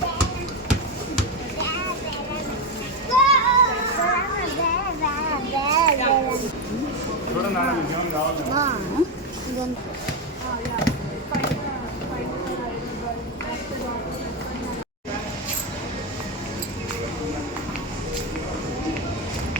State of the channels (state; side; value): normal; both; correlation 0.10